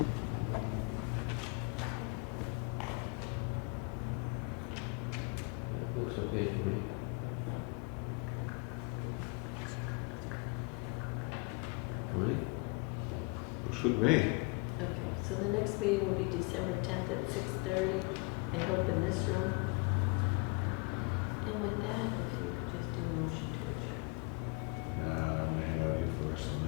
That looks okay to me. Right? Looks good to me. Okay, so the next meeting will be December 10th at 6:30, I hope in this room. And with that, if you could just do a motion to adjourn. Nah, I want to hang out here for the rest of the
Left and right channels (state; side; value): quieter; right; 30.3 dB